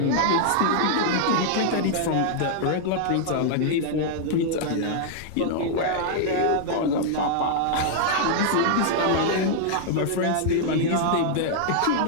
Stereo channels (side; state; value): both; different; correlation -0.01